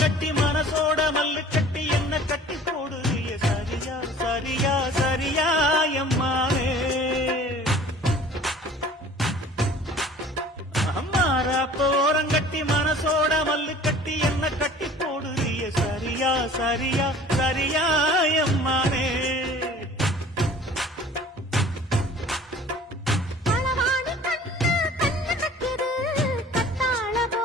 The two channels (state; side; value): normal; both; correlation 0.47